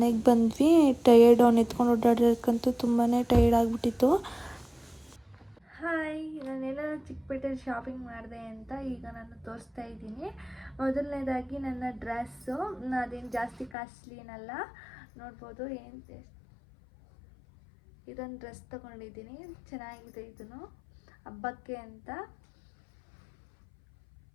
ಬಂದ್ವಿ. ಟಯರ್ಡ್, ಅವ್ನು ಎತ್ಕೊಂಡು ಓಡಾಡೋಕ್ಕಂತೂ ತುಂಬಾ ಟಯರ್ಡ್ ಆಗಿಬಿಟ್ಟಿತ್ತು. ಹಾಯ್, ನಾನೆಲ್ಲ ಚಿಕ್ಕಪೇಟೆಯಲ್ಲಿ ಶಾಪಿಂಗ್ ಮಾಡಿದೆ ಅಂತ ಈಗ ನಾನು ತೋರಿಸ್ತಾ ಇದ್ದೀನಿ. ಮೊದಲನೇದಾಗಿ ನನ್ನ ಡ್ರೆಸ್ಸು. ಅದೇನು ಜಾಸ್ತಿ ಕಾಸ್ಟ್ಲಿ ಏನಲ್ಲ, ನೋಡ್ಬೋದು. ಇದೊಂದು ಡ್ರೆಸ್ ತೊಗೊಂಡಿದ್ದೀನಿ, ಚೆನ್ನಾಗಿದೆ. ಇದನ್ನು ಹಬ್ಬಕ್ಕೆ ಅಂತ.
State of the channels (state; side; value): drops out; right; at 13.8 s